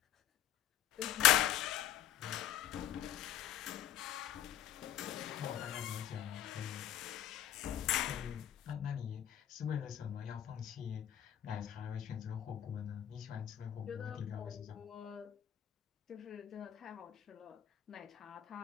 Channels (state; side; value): quieter; right; 11.1 dB